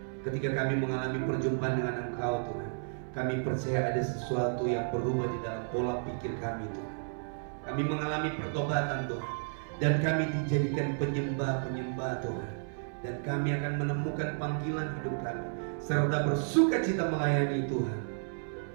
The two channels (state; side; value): silent; left; 56 dB below the other